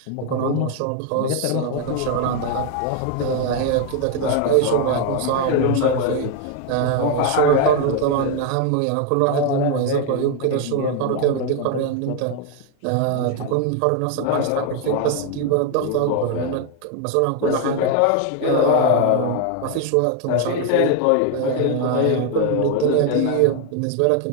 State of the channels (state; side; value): different; both; correlation 0.01